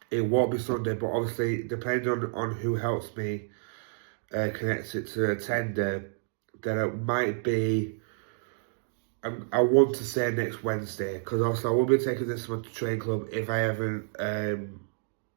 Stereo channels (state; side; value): silent; left; digital silence